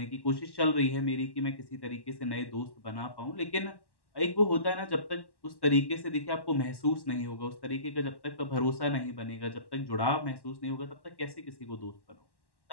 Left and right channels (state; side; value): late; right; 1.1 ms